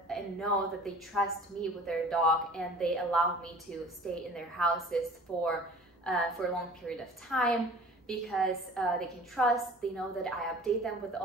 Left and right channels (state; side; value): normal; both; correlation 0.45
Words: and know that they trust me with their dog, and they allow me to stay in their houses for a long period of time, because they can trust, they know that I update them with